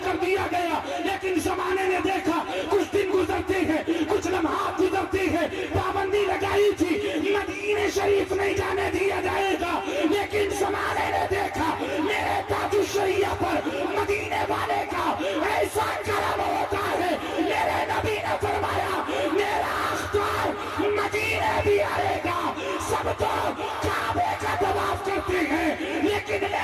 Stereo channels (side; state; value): both; identical; correlation 1.00